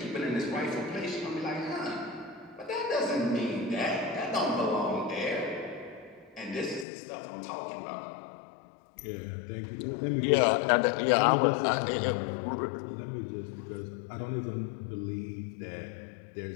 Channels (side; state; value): right; drops out; at 6.9 s